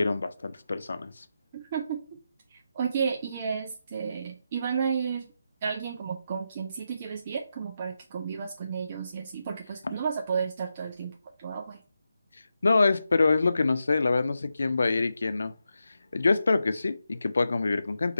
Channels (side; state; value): both; inverted; correlation -0.87